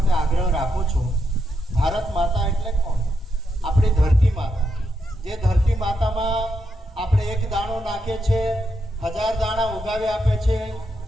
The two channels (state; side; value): normal; both; correlation 0.82